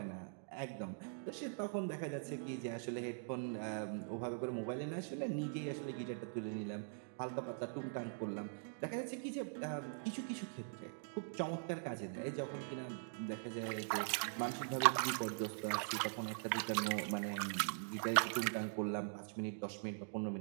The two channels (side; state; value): left; silent; digital silence